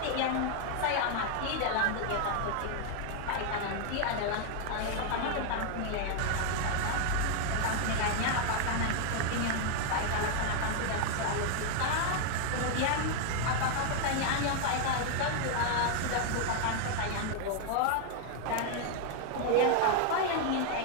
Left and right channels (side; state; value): both; different; correlation 0.00